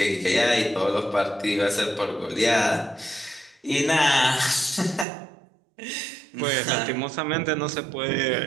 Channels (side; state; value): left; drops out; at 5.1 s